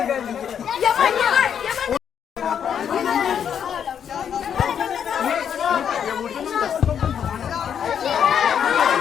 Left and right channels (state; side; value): quieter; right; 8.3 dB